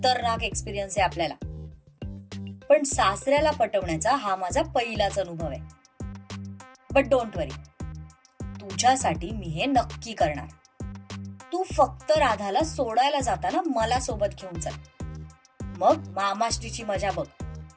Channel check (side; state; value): both; identical; correlation 1.00